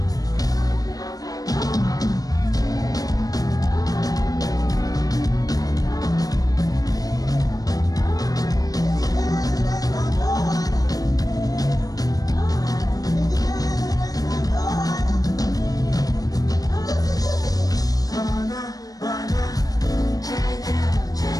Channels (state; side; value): late; right; 0.18 ms